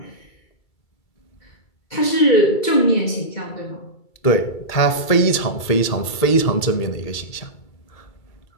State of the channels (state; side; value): late; right; 2.3 ms